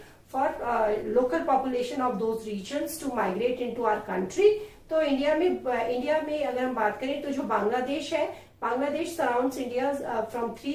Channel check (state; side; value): identical; both; correlation 1.00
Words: for local population of those regions to migrate into our country. तो India में अगर हम बात करें तो जो बांग्लादेश है, Bangladesh surrounds India from